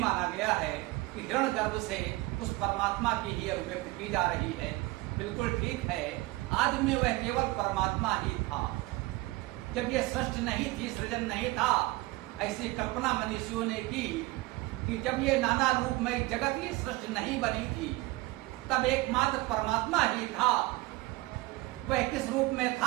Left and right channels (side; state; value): left; quieter; 20.9 dB